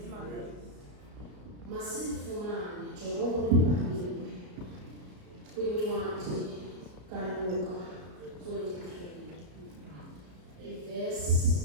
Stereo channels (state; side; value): late; left; 33 ms